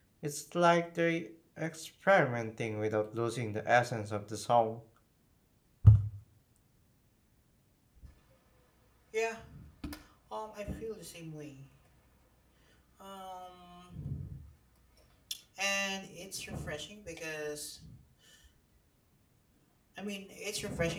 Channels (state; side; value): identical; both; correlation 1.00